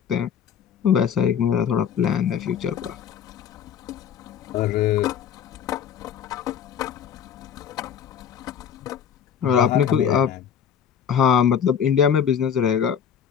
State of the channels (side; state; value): right; quieter; 8.1 dB